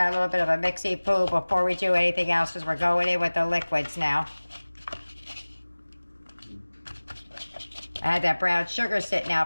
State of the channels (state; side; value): inverted; both; correlation -1.00